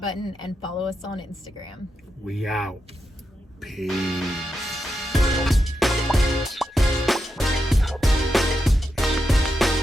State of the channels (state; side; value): normal; both; correlation 0.86